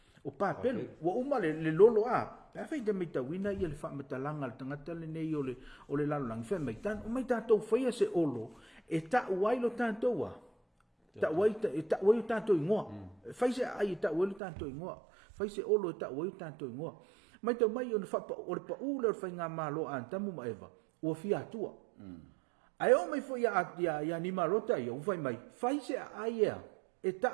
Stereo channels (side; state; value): left; drops out; at 14.4 s